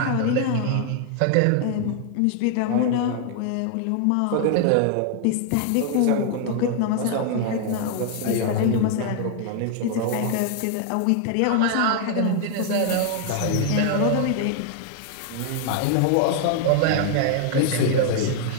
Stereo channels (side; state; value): both; different; correlation 0.00